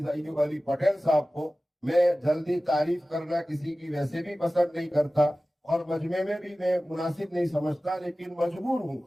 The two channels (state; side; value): normal; both; correlation 0.96